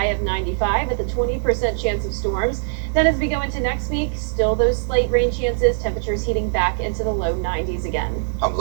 of 95 with a 20% chance of storms. Then as we go into next week, still those slight rain chances, temperatures heating back into the low 90s again. I'm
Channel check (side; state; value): left; silent; 62 dB below the other